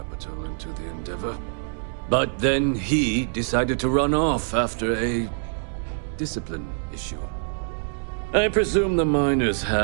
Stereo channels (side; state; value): left; silent; digital silence